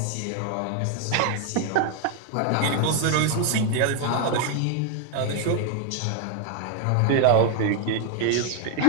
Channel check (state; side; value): different; both; correlation 0.01